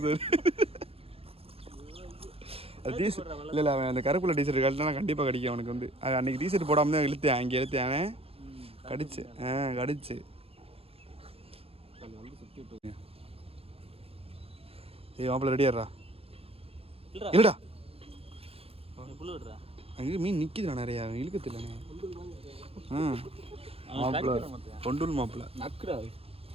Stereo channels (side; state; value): left; late; 0.28 ms